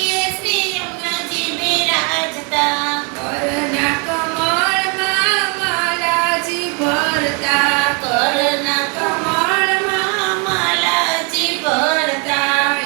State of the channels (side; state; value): left; quieter; 31.8 dB